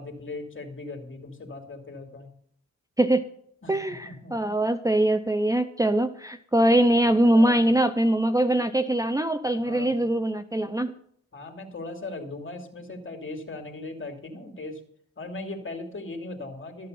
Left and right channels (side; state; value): both; normal; correlation 0.82